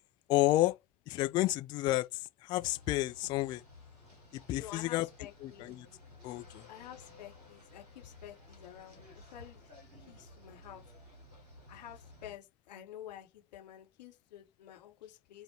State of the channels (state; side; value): quieter; right; 16.4 dB